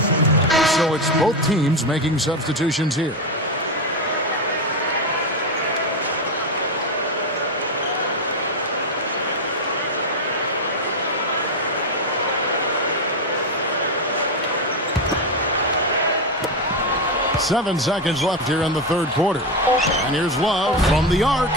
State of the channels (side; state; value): both; normal; correlation 0.11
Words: So it's both teams making substitutions here. Seven seconds left here in the third quarter. And here's Love from the arc.